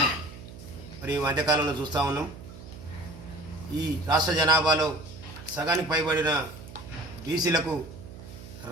మరి ఈ మధ్యకాలంలో చూస్తూ ఉన్నాం. ఈ రాష్ట్ర జనాభాలో సగానికి పైబడిన బీసీలకు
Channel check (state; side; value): noise; right; hum, 15 dB below the sound